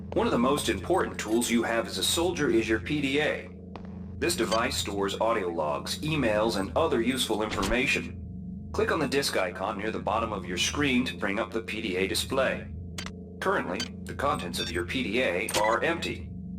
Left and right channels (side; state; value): both; identical; correlation 1.00